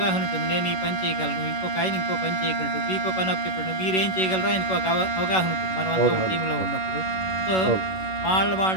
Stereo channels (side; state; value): right; late; 11 ms